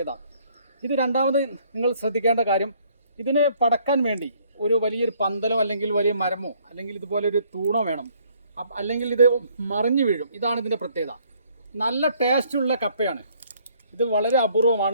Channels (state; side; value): inverted; both; correlation -0.63